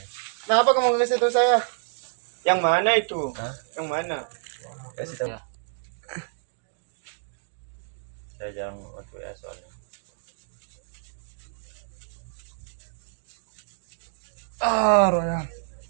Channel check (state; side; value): silent; left; digital silence